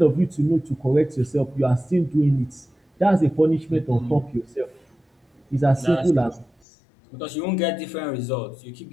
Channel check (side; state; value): right; drops out; at 6.5 s